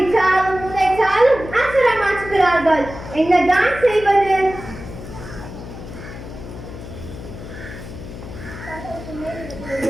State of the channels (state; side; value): noise; left; hum, 12 dB below the sound